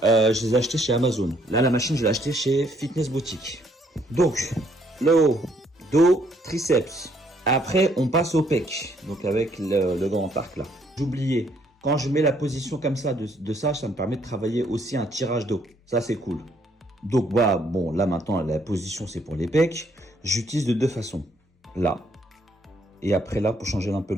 je les ai achetés chez Amazon. Là, la machine, je l'ai achetée chez Fitness Boutique. Donc, le haut, dos, triceps. Après, on passe au pec, donc avec le grand arc là. J'oubliais, quand je mets la position comme ça, de ça me permet de travailler aussi un tirage dos. Ça, c'est cool. Donc, voilà, bon, là maintenant, la position, c'est pour les pecs. J'utilise de deux façons. Là, et après là, pour changer un peu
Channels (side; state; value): both; normal; correlation 0.68